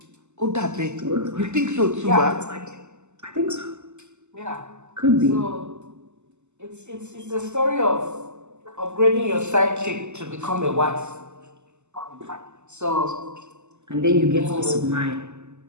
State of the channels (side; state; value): left; late; 0.83 ms